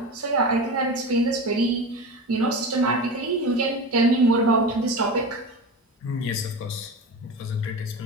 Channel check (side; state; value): both; normal; correlation 0.27